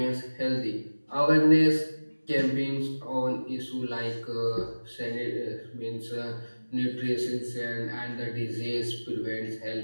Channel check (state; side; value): inverted; both; correlation -1.00